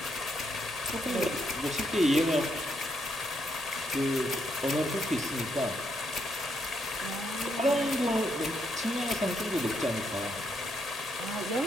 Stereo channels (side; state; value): both; normal; correlation 0.77